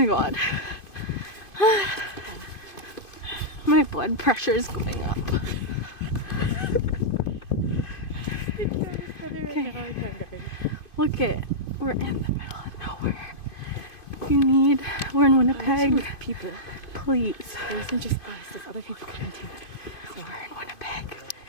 god. My blood pressure is going up. Okay. Look it. We're in the middle of nowhere. If you need, we're in Winnipeg. People. Please. It isn't just us. There's other people coming too. So we're in Winnipeg.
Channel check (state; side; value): late; right; 2.5 ms